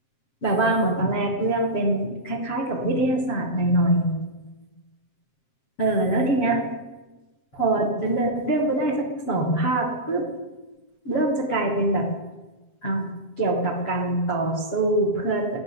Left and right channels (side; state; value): right; late; 7.6 ms